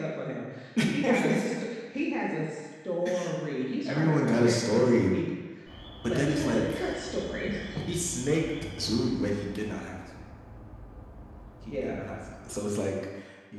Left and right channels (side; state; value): both; identical; correlation 1.00